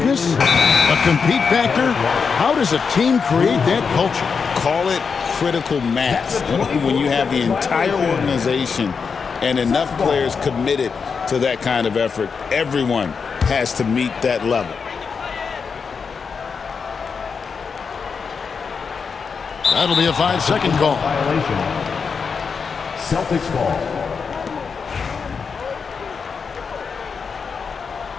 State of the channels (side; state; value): right; quieter; 5.6 dB